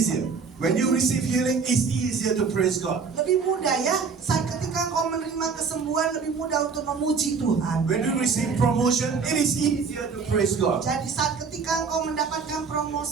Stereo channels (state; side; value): quieter; left; 5.3 dB